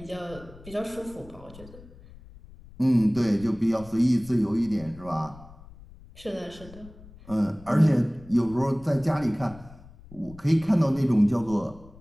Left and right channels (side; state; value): left; noise; rumble, 20 dB below the sound